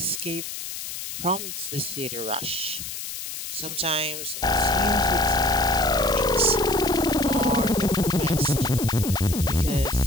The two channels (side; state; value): left; noise; hiss, 8 dB below the sound